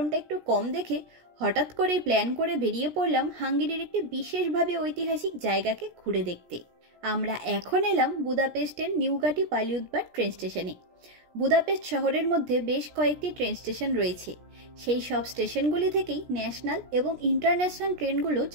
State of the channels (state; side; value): late; left; 17 ms